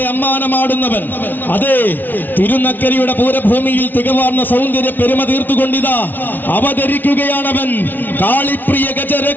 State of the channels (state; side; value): late; right; 0.087 ms